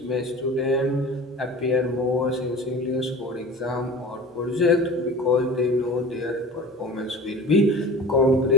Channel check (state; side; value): normal; both; correlation 0.38